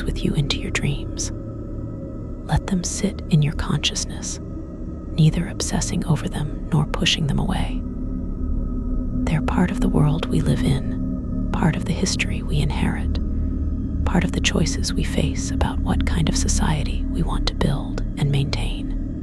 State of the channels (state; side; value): identical; both; correlation 1.00